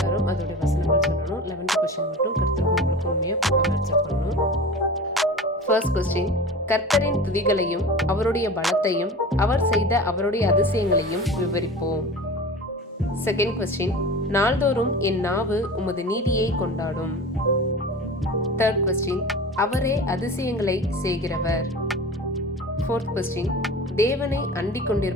அதோடைய வசனங்கள் சொல்லணும். 11th கொஸ்டின் மட்டும் கர்த்தருக்கு உங்களுக்கு உண்மையாக பார்க்க ஆன்சர் பண்ணணும். ஃபர்ஸ்ட் கொஸ்டின், கர்த்தரின் துதிகளையும் அவருடைய பலத்தையும் அவர் செய்த அவருடைய அதிசயங்களையும் விவரிப்போம். செகண்ட் கொஸ்டின், நாள்தோறும் என் நாவு உமது நீதியை கொண்டாடும். தேர்ட் கொஸ்டின், அவரே அதிசயங்களை செய்கிறவர். ஃபோர்த் கொஸ்டின், தேவனை அண்டிக்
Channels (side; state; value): both; normal; correlation 0.34